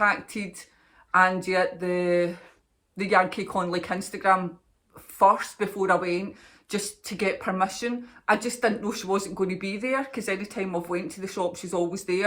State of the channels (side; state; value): both; identical; correlation 1.00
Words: Angie the yarn cake on like Instagram first before I went, just to get permission. I just didn't know she wasn't going to be there, because anytime I've went to the shop she's always